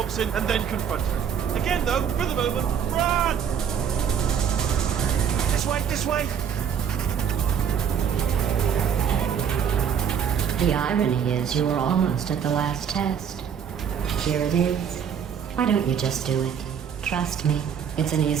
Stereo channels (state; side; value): quieter; left; 7.9 dB